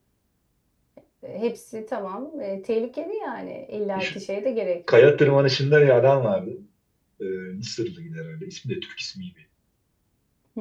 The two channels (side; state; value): both; identical; correlation 1.00